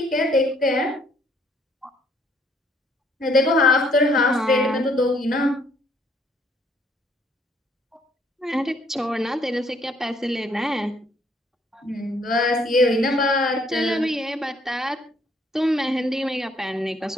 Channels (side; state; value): both; normal; correlation 0.65